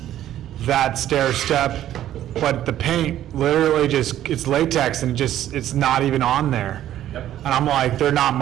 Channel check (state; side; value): quieter; left; 12.2 dB